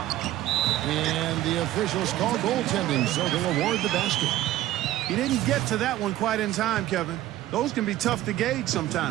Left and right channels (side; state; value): left; quieter; 14.4 dB